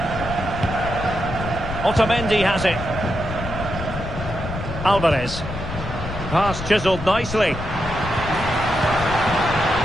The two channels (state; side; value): noise; left; rumble, 8 dB below the sound